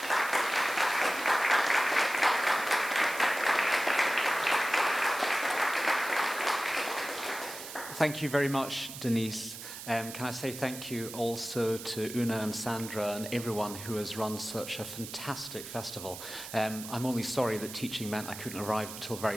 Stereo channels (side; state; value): right; noise; hiss, 11 dB below the sound